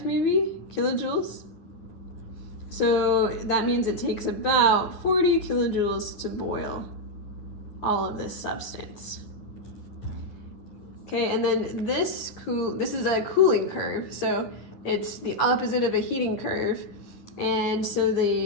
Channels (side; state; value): right; late; 10 ms